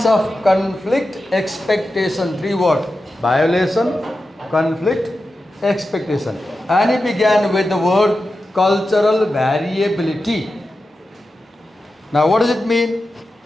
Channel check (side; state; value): both; normal; correlation 0.92